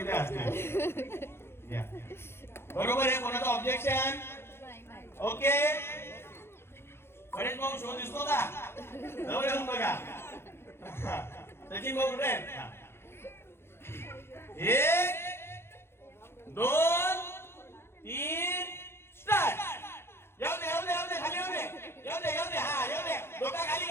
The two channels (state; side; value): late; right; 0.12 ms